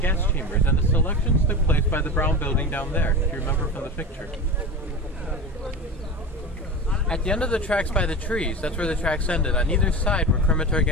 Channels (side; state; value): both; normal; correlation 0.27